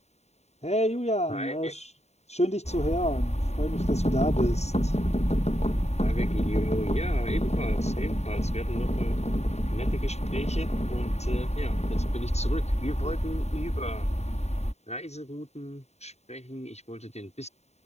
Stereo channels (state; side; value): late; right; 0.32 ms